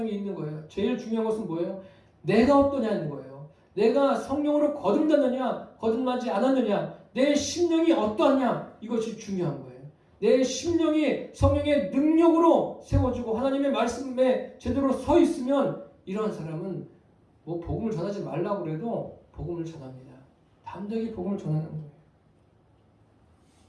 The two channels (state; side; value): identical; both; correlation 1.00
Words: 있는 거예요. 제일 중요한 것은 뭐예요? 내가 어떠냐는 거예요. 내가 성령으로 거듭났느냐 거듭나지 않았느냐 내 심령이 어떠하냐 이것이 중요한 거예요. 내 심령이 성령의 능력으로 세워지고 하나님의 말씀에 제대로 서 있으면 이러한 사람은 뭐 복음을 전하지 말라고 그래도 복음을 전합니다. 담대하게 복음을 전하는 거예요.